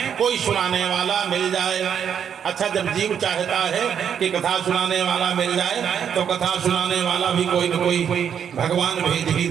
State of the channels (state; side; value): quieter; left; 8.2 dB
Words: कोई सुनाने वाला मिल जाए। अच्छा, जब जीव चाहता है कि कथा सुनाने वाला मिल जाए तो कथा सुनाने वाला भी कोई न कोई भगवान भेज ही